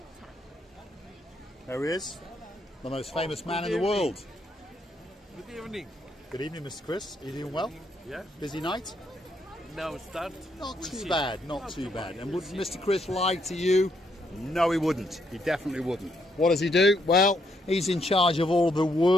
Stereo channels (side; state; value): both; normal; correlation 0.75